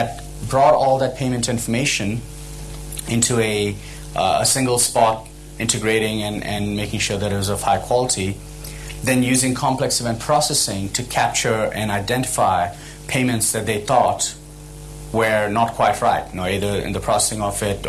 brought all that payment information into a single spot, integrating and making sure that it was of high quality, then using complex event processing to capture and identify payments that they thought were not quite right, either in the processing of it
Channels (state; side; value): identical; both; correlation 1.00